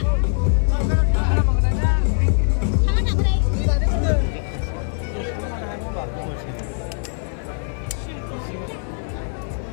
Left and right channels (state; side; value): silent; right; digital silence